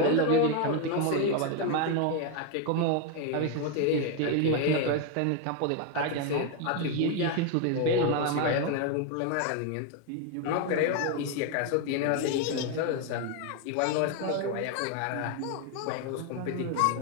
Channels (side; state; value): both; different; correlation 0.01